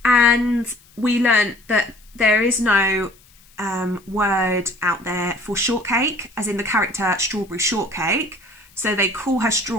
and we learnt that there is no word out there for shortcake, as in the character strawberry shortcake. So they call her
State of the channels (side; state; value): left; noise; hiss, 29 dB below the sound